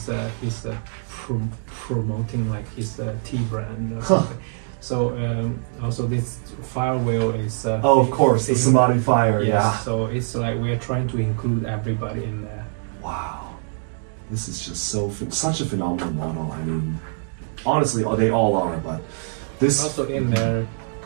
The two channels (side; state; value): left; silent; digital silence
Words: promoting like his tea brand or something. So also this fire wheel is of course, the Samadhi fire. Yes, yeah. So it's like we are trying to include everybody in there. Wow, this is just such a phenomenal model. I mean, honestly, they all are, but this also in there